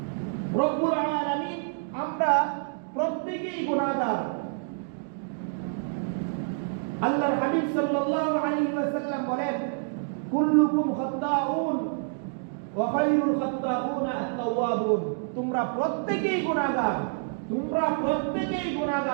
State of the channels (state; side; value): silent; left; digital silence